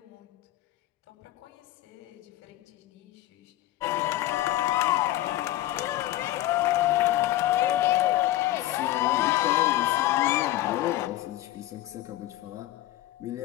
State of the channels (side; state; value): right; quieter; 15.5 dB